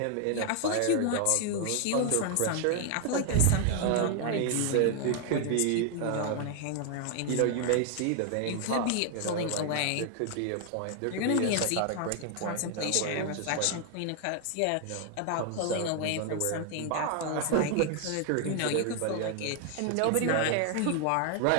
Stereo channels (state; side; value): different; both; correlation 0.00